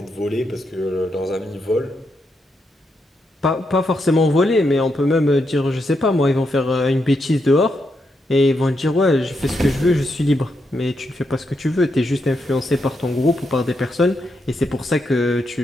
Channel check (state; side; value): normal; both; correlation 0.82